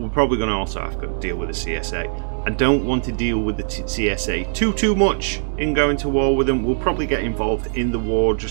probably gonna also have to deal with the CSA. I don't want to deal with the CSA too much in going to war with them. We'll probably get involved in the war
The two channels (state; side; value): silent; left; digital silence